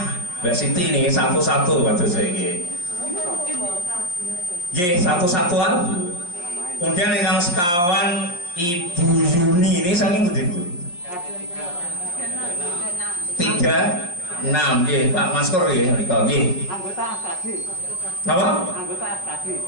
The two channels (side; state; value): right; late; 5.6 ms